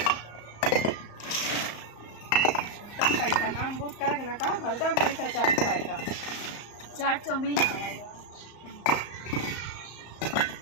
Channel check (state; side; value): late; right; 34 ms